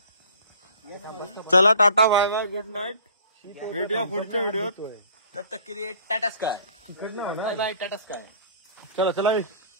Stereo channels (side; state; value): both; inverted; correlation -0.50